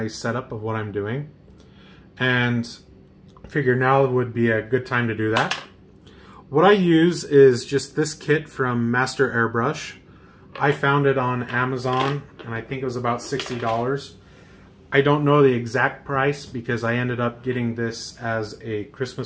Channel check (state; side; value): identical; both; correlation 1.00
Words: setup of what I'm doing. And figure now would be a good time to do that. What I use is just this kit from Master Airbrush. I found it on Amazon and I think it was about $60. I don't know the exact price because I ended up getting this as a